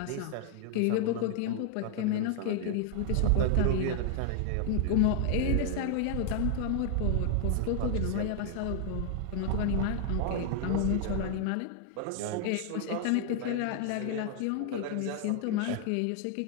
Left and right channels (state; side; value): different; both; correlation 0.00